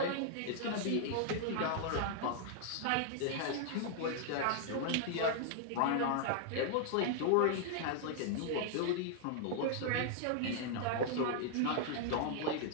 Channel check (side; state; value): both; different; correlation -0.01